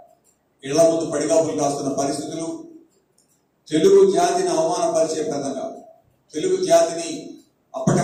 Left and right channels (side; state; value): both; identical; correlation 1.00